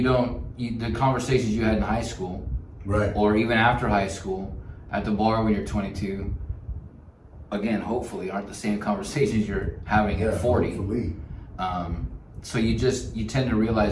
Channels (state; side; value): identical; both; correlation 1.00